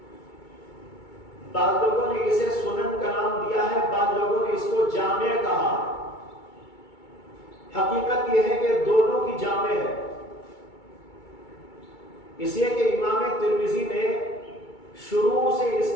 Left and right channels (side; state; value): right; late; 2.3 ms